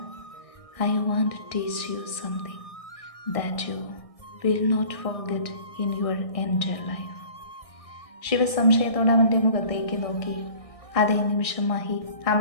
I want to teach you something that you will not forget in your entire life. Shiva സംശയത്തോടെ അവൻ്റെ മുഖത്തേക്ക് നോക്കി. അതേ നിമിഷം മഹി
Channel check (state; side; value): late; right; 1.6 ms